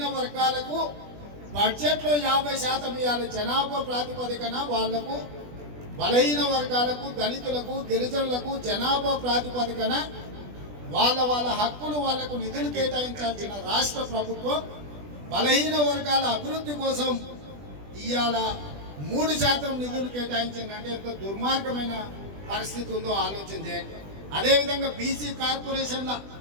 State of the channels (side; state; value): left; late; 20 ms